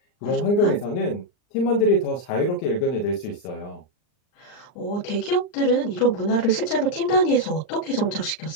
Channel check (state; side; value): late; right; 39 ms